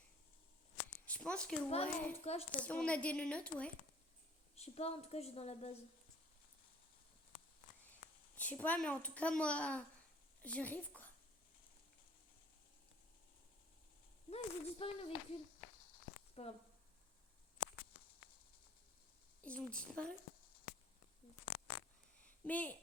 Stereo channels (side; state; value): both; normal; correlation 0.54